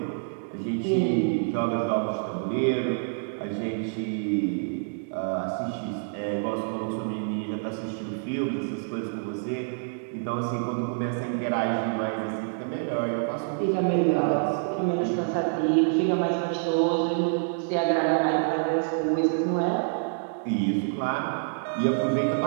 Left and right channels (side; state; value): left; silent; digital silence